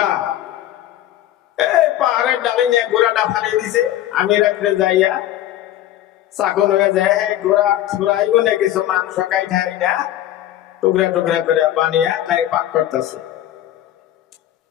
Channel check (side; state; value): right; quieter; 13.0 dB